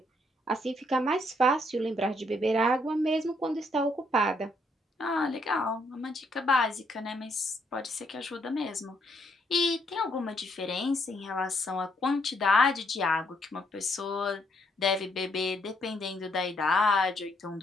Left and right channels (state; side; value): normal; both; correlation 0.72